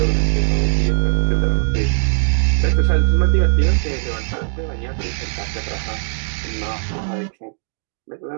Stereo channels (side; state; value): left; silent; digital silence